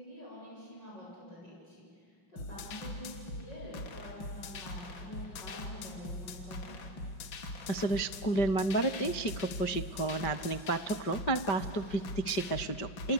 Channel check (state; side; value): late; right; 5.2 ms